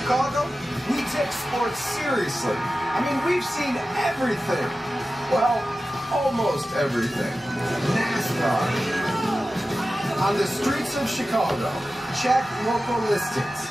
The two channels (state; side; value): normal; both; correlation 0.94